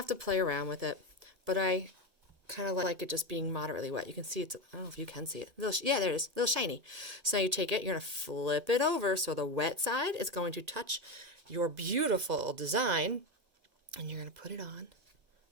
to play around with it. But I kind of like it just being moderately wet. You can see it's, I don't know if you can see it. Yeah, there it is, a little shiny. So now you take it, you're gonna flip it over so the wet side is going to touch your beautiful design, and you're gonna put it on,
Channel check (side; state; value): left; late; 1.8 ms